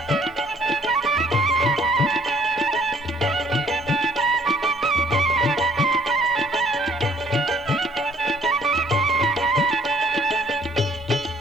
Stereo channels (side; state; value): both; normal; correlation 0.61